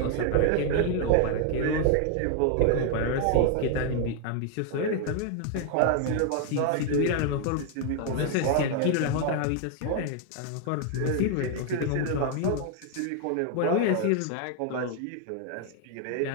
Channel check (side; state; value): both; different; correlation 0.00